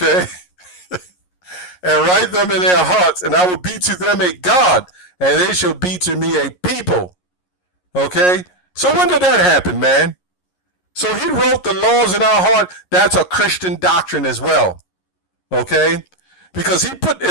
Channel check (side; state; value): right; late; 11 ms